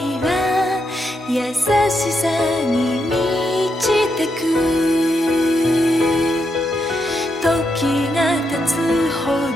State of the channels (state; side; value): normal; both; correlation 0.82